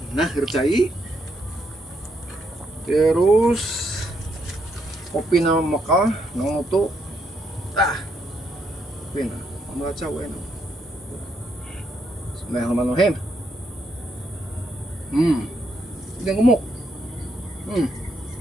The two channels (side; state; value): both; normal; correlation 0.77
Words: nah gercai. Terus kopi na mekal nu tuh. Tah. Kopi na membaca we na. Bismillahirrahmanirrahim. Ini gemuk.